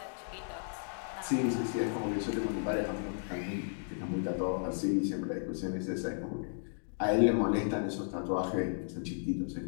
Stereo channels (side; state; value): right; silent; digital silence